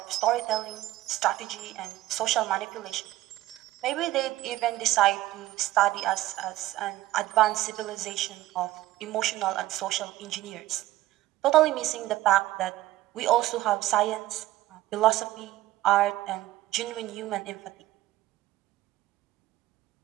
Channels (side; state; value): left; quieter; 15.8 dB